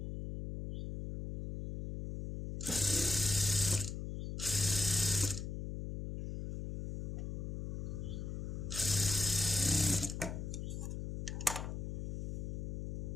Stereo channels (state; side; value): noise; left; hum, 3 dB below the sound